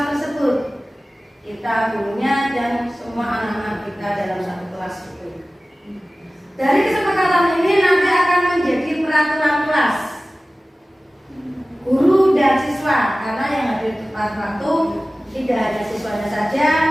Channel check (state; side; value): normal; both; correlation 0.97